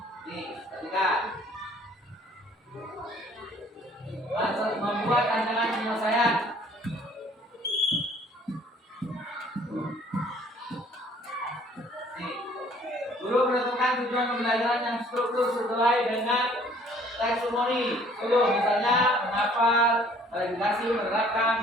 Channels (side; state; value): both; normal; correlation 0.57